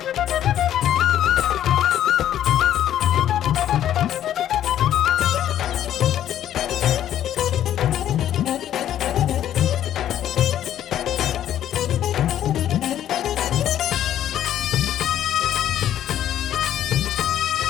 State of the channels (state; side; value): quieter; right; 11.2 dB